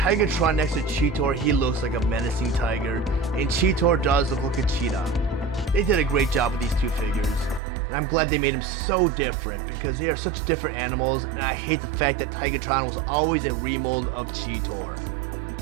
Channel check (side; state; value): left; drops out; at 7.6 s